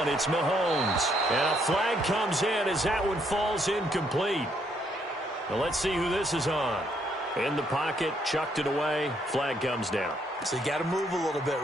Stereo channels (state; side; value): normal; both; correlation 0.71